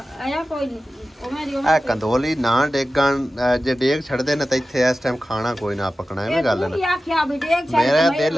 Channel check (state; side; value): normal; both; correlation 0.94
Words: आया कोई नहीं आ कंदोली ना डेगन जे डेग छड़दे ने ते इथे इस टाइम खाना कोई ना पकना है गल ना आख्या भी डेग छड़ मेरा दिल